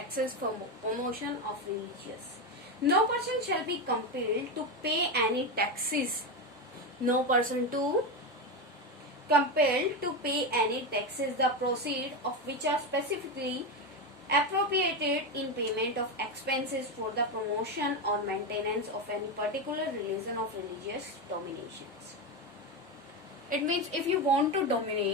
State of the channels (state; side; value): normal; both; correlation 0.14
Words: for promotion of religious. No person shall be compelled to pay any taxes. No person to compelled to pay any taxes, the proceeds of which are specifically appropriated in payment of expenses for the promotion or maintenance of any particular religion of religious dominations. It means if you want to